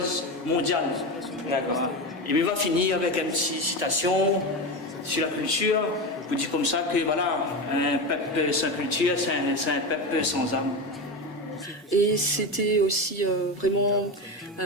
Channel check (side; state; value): both; normal; correlation 0.20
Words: mondiale. D'accord. Et il va finir avec une petite citation sur la culture. Je vous dis comme ça que voilà, un peuple sans culture, c'est un peuple sans âme. Et c'était aussi vraiment